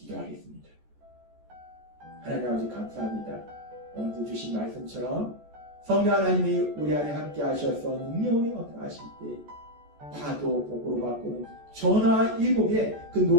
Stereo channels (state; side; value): late; left; 14 ms